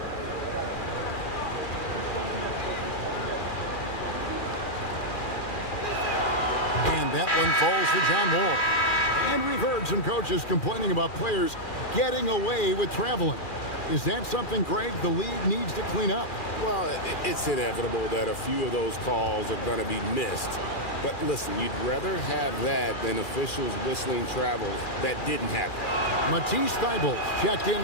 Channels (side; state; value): right; late; 2.4 ms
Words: shots. That one falls for John Wall. And we've heard some coaches complaining about players getting away with traveling. Is that something, Greg, the league needs to clean up? Well, it's inevitable that a few of those calls are going to be missed. But listen, you'd rather have that than officials whistling travels that didn't happen. Matisse Thybulle checked